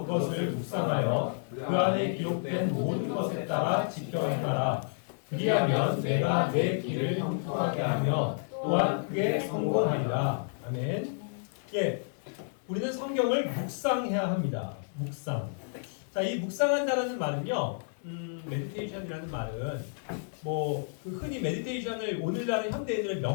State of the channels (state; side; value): silent; right; digital silence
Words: 그것을 묵상하여 그 안에 기록된 모든 것에 따라 지켜 행하라. 그리하면 내가 내 길을 형통하게 하며 또한 그게 성공하리라. 아멘. 예, 우리는 성경을 묵상해야 합니다. 묵상. 자, 이 묵상한다라는 말은요, 메디테이션이라는 말은 흔히 메디테이션을 오늘날의 현대인들은